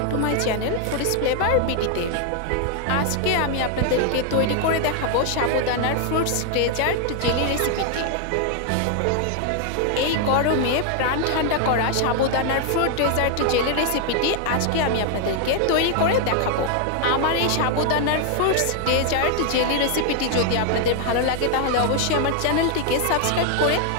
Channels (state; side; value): different; both; correlation 0.00